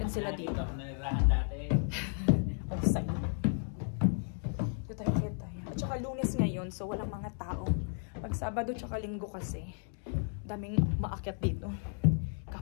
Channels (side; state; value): right; silent; 55 dB below the other